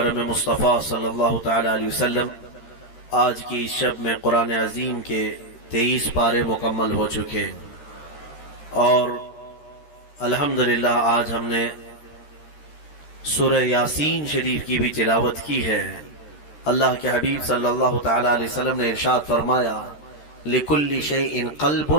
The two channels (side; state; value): right; late; 13 ms